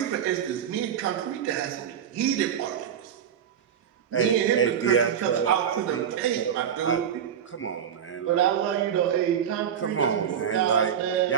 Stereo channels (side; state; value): left; quieter; 8.7 dB